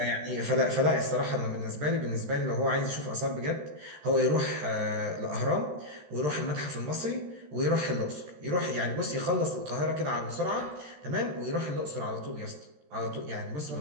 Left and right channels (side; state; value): left; late; 13 ms